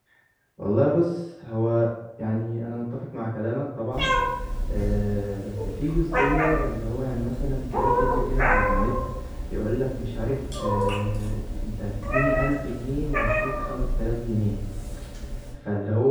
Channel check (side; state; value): both; identical; correlation 1.00